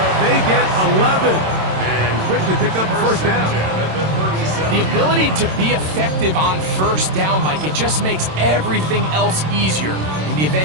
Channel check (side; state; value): left; late; 27 ms